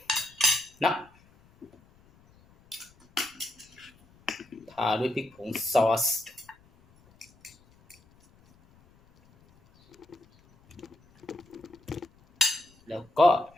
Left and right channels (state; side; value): noise; left; rumble, 29 dB below the sound